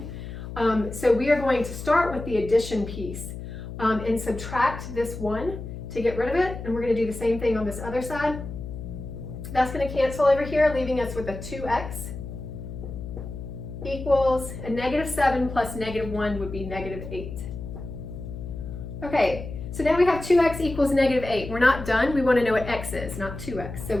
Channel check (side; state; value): left; noise; hum, 9 dB below the sound